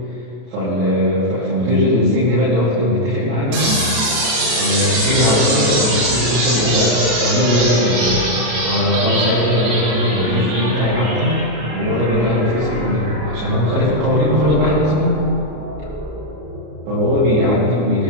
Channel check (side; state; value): left; late; 33 ms